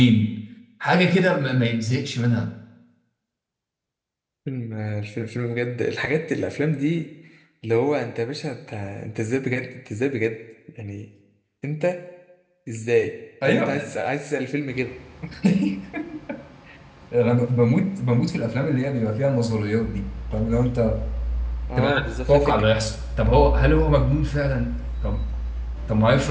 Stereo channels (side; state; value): both; identical; correlation 1.00